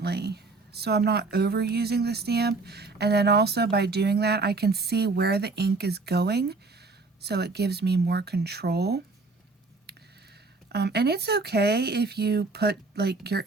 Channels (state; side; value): quieter; left; 3.7 dB